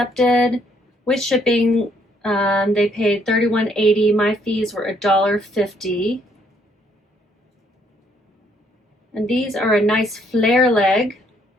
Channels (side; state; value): both; normal; correlation 0.68